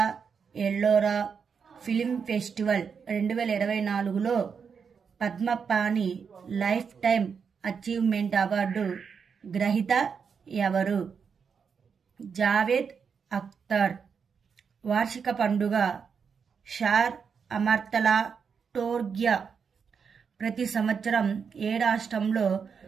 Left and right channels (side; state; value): left; quieter; 6.3 dB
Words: ఎల్లోరా ఫిల్మ్ ఫెస్టివల్ 2024లో Padmapani lifetime achievement award గ్రహీత ఎవరు? జావేద్ అఖ్తర్. వార్షిక పండుగ షార్ అమర్తలా టోర్గ్యా ప్రతి సంవత్సరం ఏ రాష్ట్రంలో